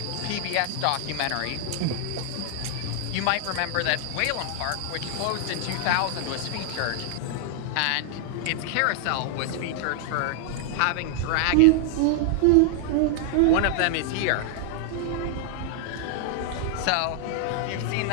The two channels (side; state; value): both; different; correlation 0.00